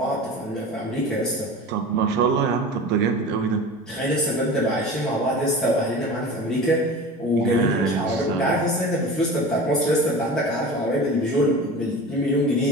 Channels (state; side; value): normal; both; correlation 0.34